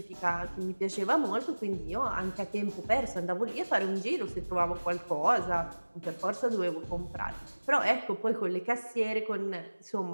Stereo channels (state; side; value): inverted; both; correlation -1.00